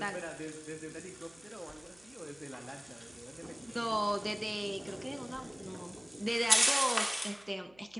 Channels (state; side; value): noise; right; hum, 27 dB below the sound